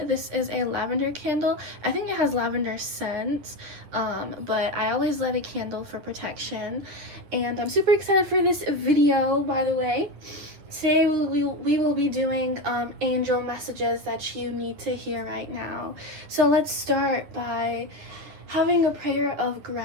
This is a lavender candle. I think it has lavender scent, but I always light a candle for protection. And I'm super excited for this video, by the way. Today we will be doing angel messages that you need to hear right now. So let's start by having a prayer of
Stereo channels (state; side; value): late; left; 10 ms